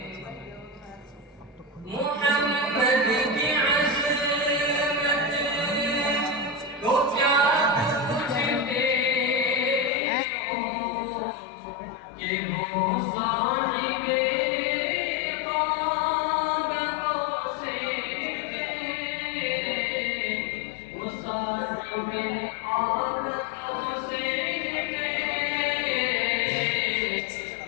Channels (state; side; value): drops out; right; at 9.9 s